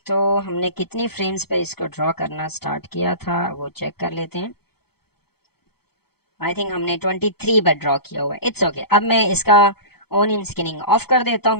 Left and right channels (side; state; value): right; late; 0.96 ms